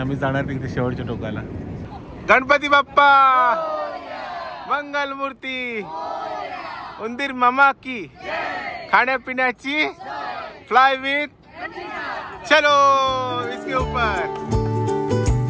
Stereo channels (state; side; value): identical; both; correlation 1.00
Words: जाणार तिथे शेवटच्या टोकाला. गणपती बाप्पा मंगल मूर्ती, उंदीर मामा की खाण्यापिण्याची फ्लाय विथ चलो इसके ऊपर.